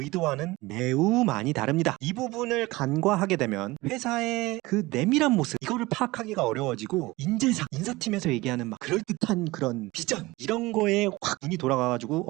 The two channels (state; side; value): quieter; left; 20.7 dB